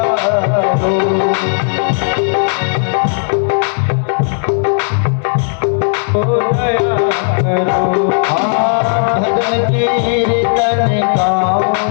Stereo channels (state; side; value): silent; right; digital silence